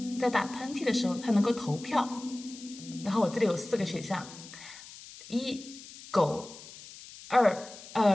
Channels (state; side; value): noise; left; hiss, 16 dB below the sound